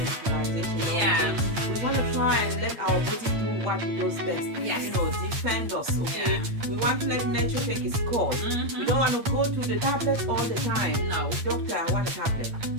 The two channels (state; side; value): late; left; 8.6 ms